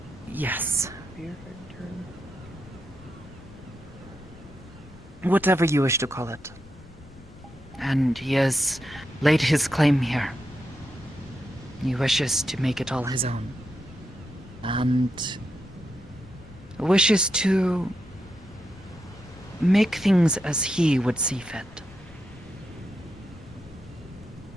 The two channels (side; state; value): left; noise; rumble, 21 dB below the sound